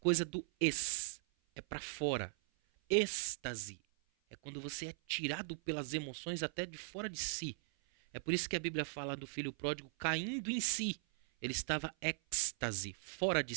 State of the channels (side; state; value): left; silent; 52 dB below the other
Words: do ex, é para fora. Êxtase é quando você é tirado pelas emoções até de fora de si. É por isso que a Bíblia fala do filho pródigo caindo em si. Ele estava êxtase, fora de